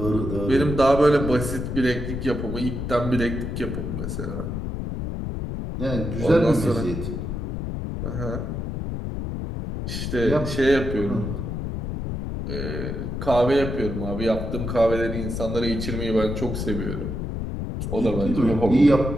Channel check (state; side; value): noise; left; rumble, 4 dB below the sound